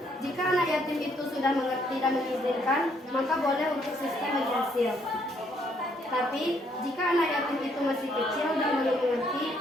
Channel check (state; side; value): normal; both; correlation 0.69